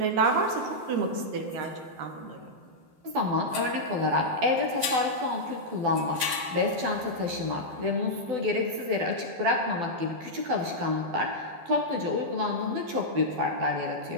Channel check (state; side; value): late; left; 12 ms